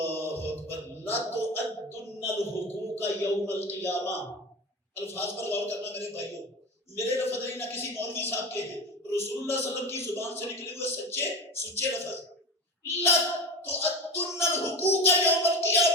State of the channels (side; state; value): both; normal; correlation 0.27